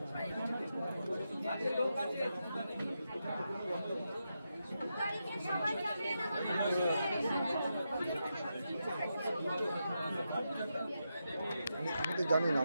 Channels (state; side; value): inverted; both; correlation -0.86